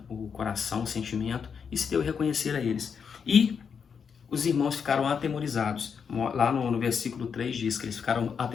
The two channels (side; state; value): right; quieter; 6.6 dB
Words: o coração, o sentimento, e se deu a reconhecer a eles. E os irmãos ficaram atemorizados. Lá no versículo 3 diz que eles ficaram